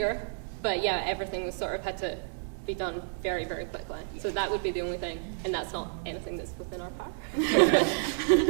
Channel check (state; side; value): silent; left; digital silence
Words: But yeah, everything was sort of had to be done very, very quickly. So that would be the only thing, and that's not anything that's within our power.